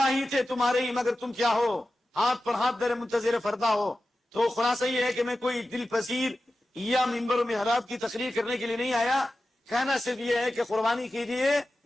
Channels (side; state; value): both; normal; correlation 0.94